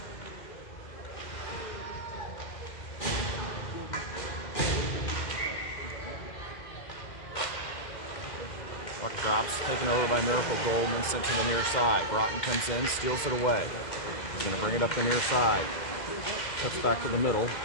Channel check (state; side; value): late; right; 2.0 ms